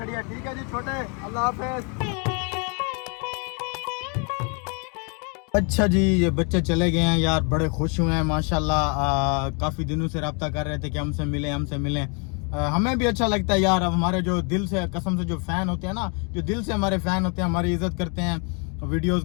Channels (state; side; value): quieter; right; 36.7 dB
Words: है। ठीक है जी छोटे, अल्लाह हाफिज़। अच्छा जी ये बच्चे चले गए हैं यार, बड़े खुश हुए हैं माशाल्लाह। काफ़ी दिनों से रब्ता कर रहे थे कि हमसे मिलें। हमें भी अच्छा लगता है यार। अब हमारे जो दिल से कसम से जो फ़ैन होते हैं ना, जो दिल से हमारे फ़ैन होते हैं, हमारी इज़्ज़त करते हैं, वीडियोस